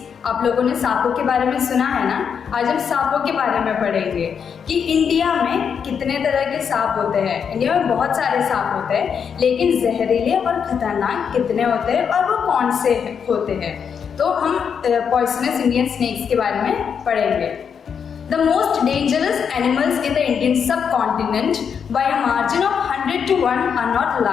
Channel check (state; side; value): quieter; right; 7.0 dB